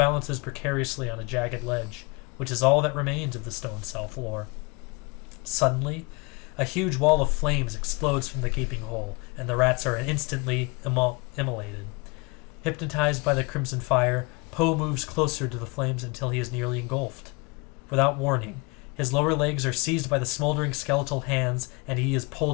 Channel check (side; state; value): right; quieter; 28.7 dB